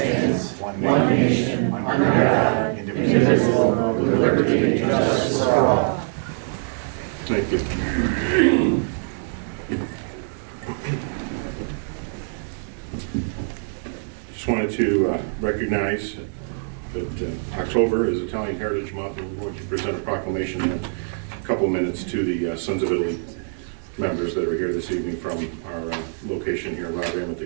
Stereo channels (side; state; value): left; silent; 63 dB below the other